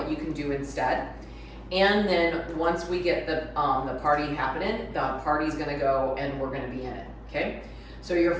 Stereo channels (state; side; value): identical; both; correlation 1.00